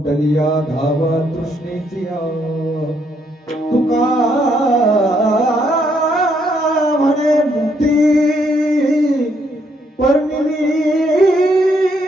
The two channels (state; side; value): normal; both; correlation 0.73